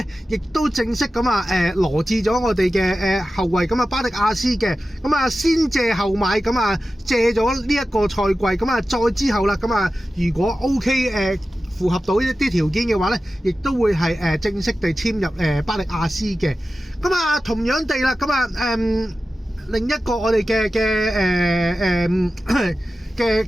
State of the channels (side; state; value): both; normal; correlation 0.94